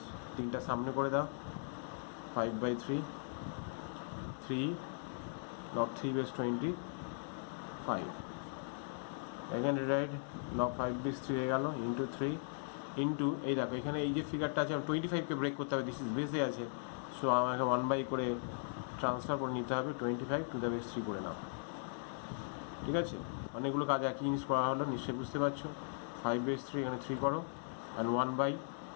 তিনটা সামনে করে দাও, 5 by 3 log 3 base 25, again rewrite log 5 base 3 হয়ে গেল, ইন্টু 3 ইন্টু এই দেখো এখানে এই যে ফিগারটা আছে 25কে ব্রেক করতে হবে, দিস ইজ বেসে আছে, সো আমাকে 1 বাই করে ট্রান্সফার করে নিতে হবে, 25 টু দ্য বেস 3 করে নাও, ঠিক আছে। অনেকগুলো কাজ একই জিনিস করা হলো, নিশ্চয়ই বুঝতে পারছো। 5 বেস 3 এখানে 3 করো, অ্যান্ড 1 বাই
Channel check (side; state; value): right; silent; digital silence